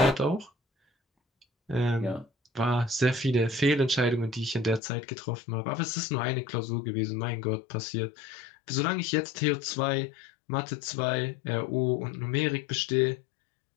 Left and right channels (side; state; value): right; drops out; at 4.8 s